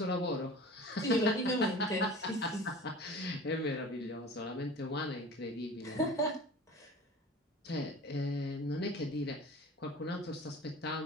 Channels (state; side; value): normal; both; correlation 0.39